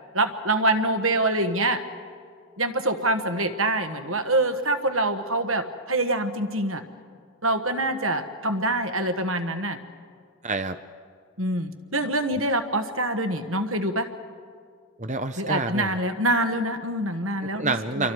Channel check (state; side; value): normal; both; correlation -0.07